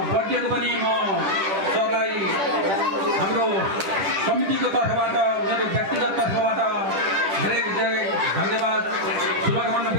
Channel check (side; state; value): left; late; 10 ms